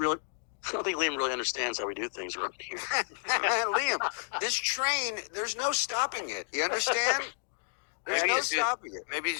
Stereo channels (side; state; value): right; silent; digital silence